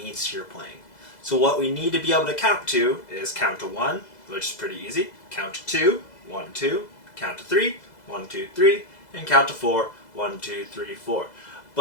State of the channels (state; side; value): late; right; 2.0 ms